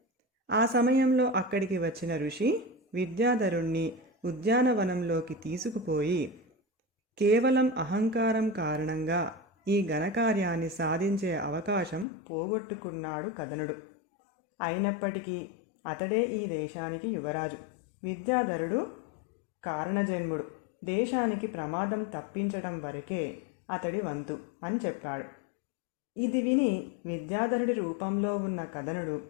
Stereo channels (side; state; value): right; drops out; at 12.1 s